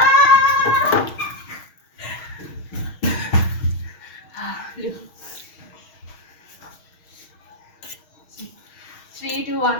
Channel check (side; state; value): right; late; 6.3 ms